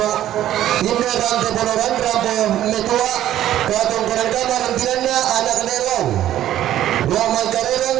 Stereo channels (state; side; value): quieter; left; 12.5 dB